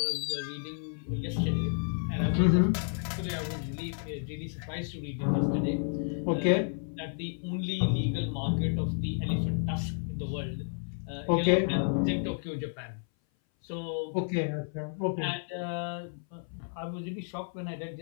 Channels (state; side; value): silent; right; 57 dB below the other